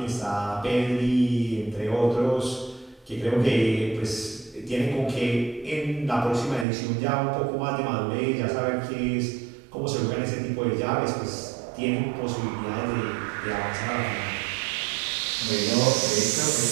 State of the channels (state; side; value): drops out; left; at 6.7 s